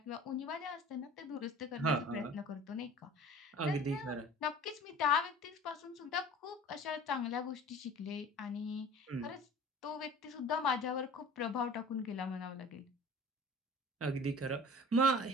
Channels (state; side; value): normal; both; correlation 0.43